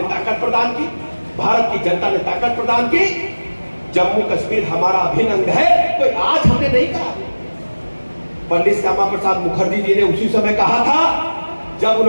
ताकत प्रदान की, भारत की जनता ने ताकत प्रदान की, जम्मू कश्मीर हमारा अभिन्न अंग है, कोई आज हमने नहीं कहा। पंडित श्यामा प्रसाद मुखर्जी जी ने उसी समय कहा था जब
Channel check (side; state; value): both; inverted; correlation -1.00